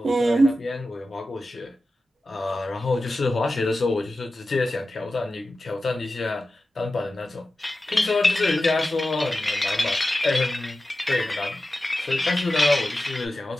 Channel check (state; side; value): normal; both; correlation 0.94